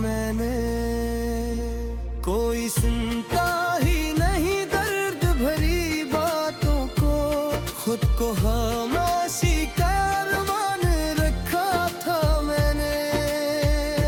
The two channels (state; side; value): identical; both; correlation 1.00